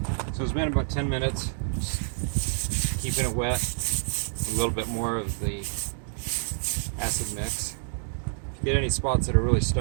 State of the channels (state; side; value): silent; left; digital silence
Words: So it's been about 10 minutes. Just keeping it wet. A little bit more of the acid mix. Get any spots that are really